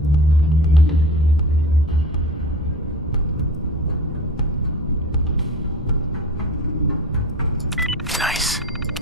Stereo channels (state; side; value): normal; both; correlation 0.36